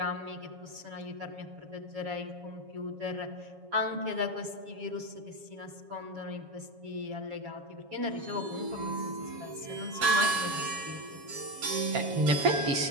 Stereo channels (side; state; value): left; late; 7.2 ms